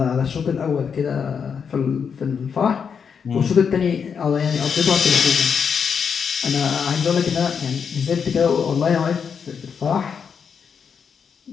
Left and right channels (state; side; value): quieter; right; 6.6 dB